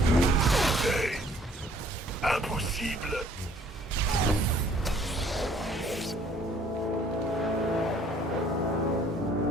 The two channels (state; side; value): normal; both; correlation 0.59